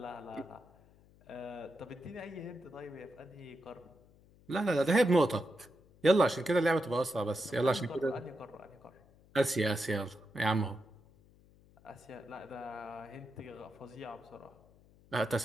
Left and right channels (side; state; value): left; noise; hum, 27 dB below the sound